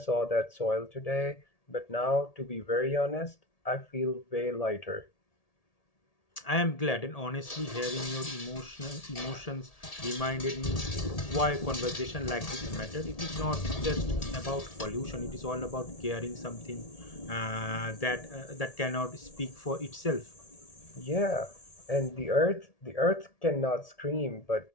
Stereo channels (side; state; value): right; late; 1.8 ms